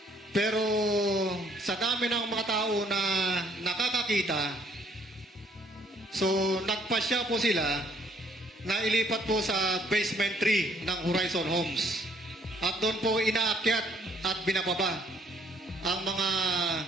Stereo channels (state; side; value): normal; both; correlation 0.64